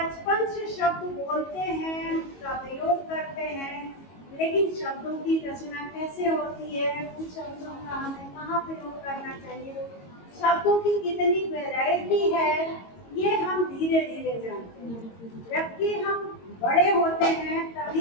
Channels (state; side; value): late; right; 22 ms